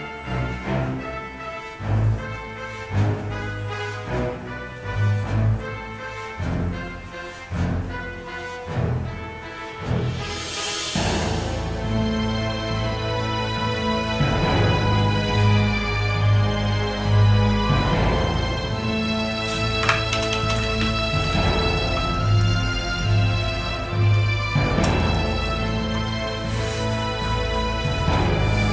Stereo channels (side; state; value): both; identical; correlation 1.00